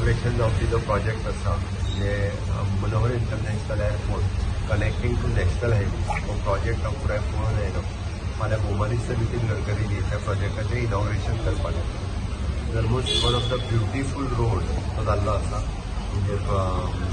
जावपी जो प्रोजेक्ट आसा म्हणजे Manohar international airport connecting to national highway हो प्रोजेक्ट हांव पुराय पळोवन येयलो. फाल्यां भोव मिनिस्टर नितीन गडकरीजी त्या प्रोजेक्टाचें इनॉग्रेशन करपाक येता. Almost one of the beautiful road तो जाल्लो आसा म्हणजे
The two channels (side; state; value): both; identical; correlation 1.00